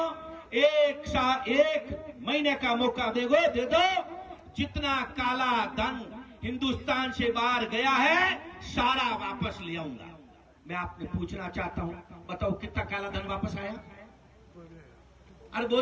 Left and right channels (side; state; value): both; identical; correlation 1.00